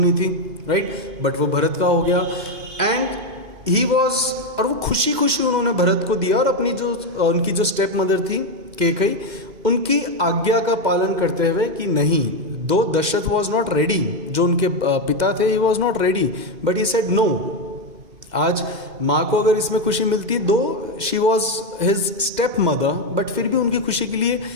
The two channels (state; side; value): late; left; 2.5 ms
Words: थी, राइट? बट वो भरत का हो गया. एंड ही वॉज, और वो खुशी खुशी उन्होंने भरत को दिया, और अपनी जो उनकी जो स्टेप मदर थी कैकेयी, उनकी आज्ञा का पालन करते हुए कि नहीं, दो दशरथ वॉज नॉट रेडी, जो उनके पिता थे, he was not ready, but he said no. आज माँ को अगर इसमें खुशी मिलती है, though she was his step mother, but फिर भी उनकी खुशी के लिए